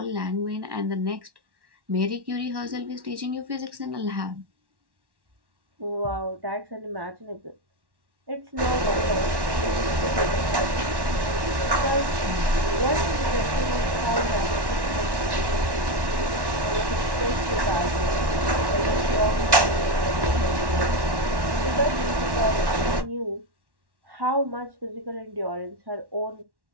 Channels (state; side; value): late; left; 1.1 ms